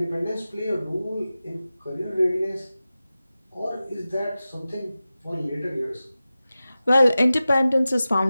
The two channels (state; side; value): inverted; both; correlation -0.95